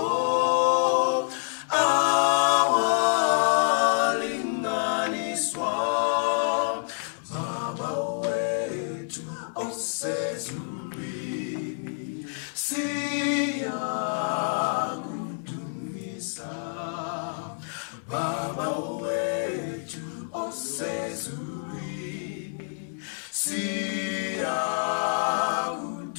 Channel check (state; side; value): silent; right; 60 dB below the other